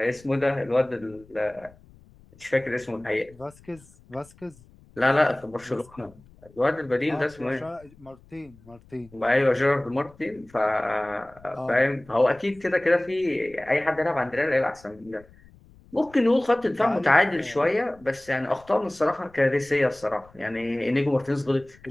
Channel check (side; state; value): left; noise; rumble, 26 dB below the sound